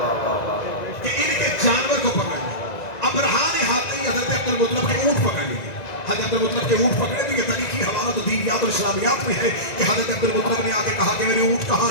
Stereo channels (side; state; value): right; late; 1.9 ms